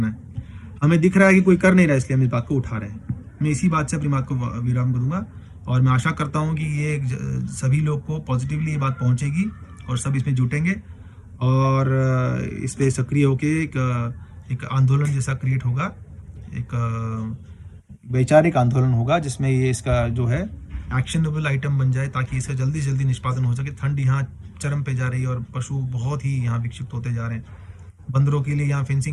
है। हमें दिख रहा है कि कोई कर नहीं रहा, इसलिए हम इस बात को उठा रहे हैं। मैं इसी बात से अपनी बात को विराम करूँगा और मैं आशा करता हूँ कि ये सभी लोग को पॉजिटिवली ये बात पहुँचेगी और सब इसमें जुटेंगे और इस पर सक्रिय होकर एक आंदोलन जैसा क्रिएट होगा, एक वैचारिक आंदोलन होगा जिसमें ये इसका जो है एक्शनेबल आइटम बन जाए, ताकि इसका जल्दी से जल्दी निष्पादन हो सके। ठंड यहाँ चरम पे जा रही है और पशु बहुत ही यहाँ विक्षिप्त होते जा रहे हैं। बंदरों के लिए यहाँ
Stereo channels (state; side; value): identical; both; correlation 1.00